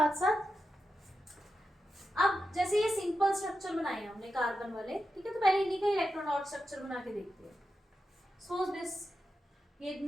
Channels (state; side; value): normal; both; correlation 0.89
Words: साथ। अब जैसे ये सिंपल स्ट्रक्चर बनाए हमने कार्बन वाले, ठीक है, तो पहले इन्हीं का इलेक्ट्रॉन डॉट स्ट्रक्चर बना के देखते हैं। सो दिस, ये